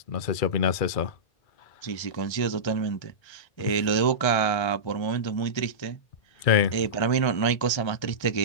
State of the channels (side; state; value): right; late; 1.3 ms